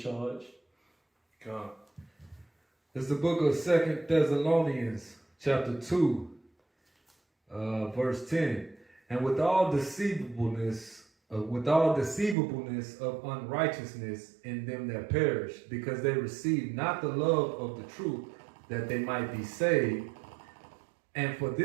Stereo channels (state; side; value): drops out; left; at 12.4 s